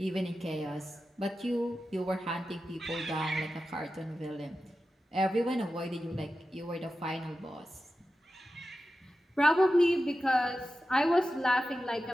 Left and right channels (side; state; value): both; normal; correlation 0.92